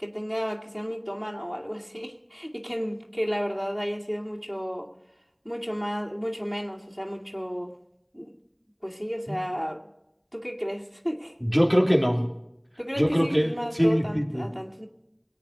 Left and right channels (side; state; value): both; identical; correlation 1.00